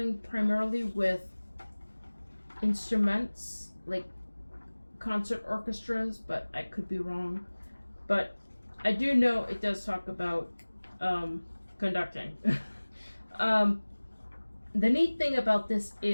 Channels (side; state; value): both; inverted; correlation -1.00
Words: primarily with instruments, like concert orchestras, but I could be wrong. But I do know it does talk about conducting. The neat thing about this